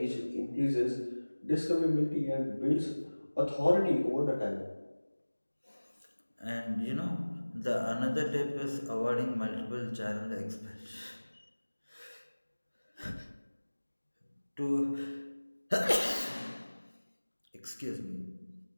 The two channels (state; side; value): inverted; both; correlation -1.00